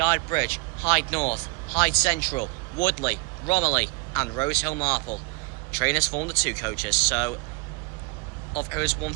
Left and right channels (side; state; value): left; quieter; 27.7 dB